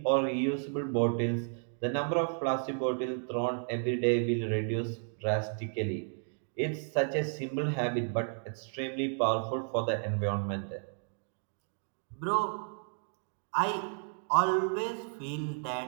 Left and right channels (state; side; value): silent; left; 56 dB below the other